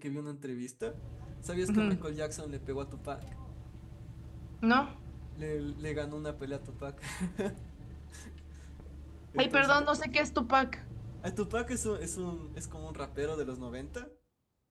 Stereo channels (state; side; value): identical; both; correlation 1.00